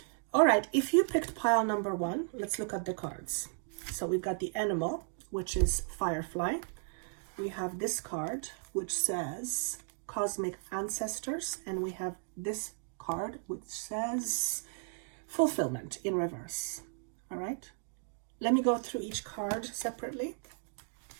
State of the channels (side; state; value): left; silent; 55 dB below the other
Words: All right, if you picked pile number 1, let's look at the cards. So we've got the animal, which is Firefly. We have this card, which says Cosmic Ancestors, and we have this card, which says Fulfillment in reverse. All right. Let me go through each card separately.